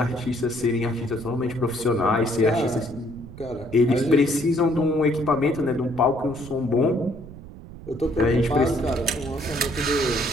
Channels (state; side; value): noise; right; rumble, 15 dB below the sound